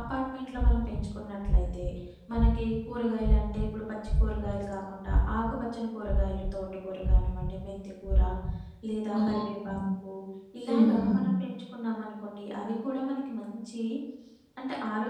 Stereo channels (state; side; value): identical; both; correlation 1.00